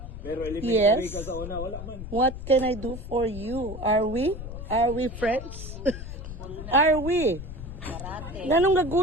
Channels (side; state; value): left; noise; rumble, 10 dB below the sound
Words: pero elementary Yes. ka sa una, wala man. What can I do for you? Are we? Are we friends? Are we? Nanong